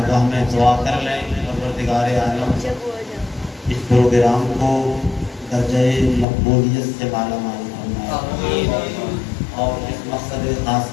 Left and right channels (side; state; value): right; drops out; at 6.2 s